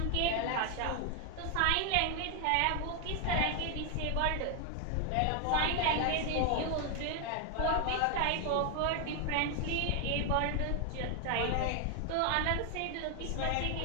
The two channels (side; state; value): both; different; correlation 0.00